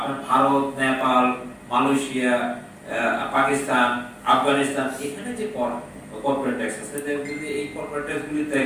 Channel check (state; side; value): identical; both; correlation 1.00